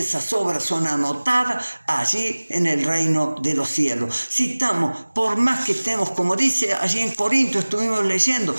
esas obras son anotadas allí en el reino de los cielos. Si estamos, por más que estemos, como dice allí en Corintios, estuvimos leyendo,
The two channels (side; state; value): both; inverted; correlation -1.00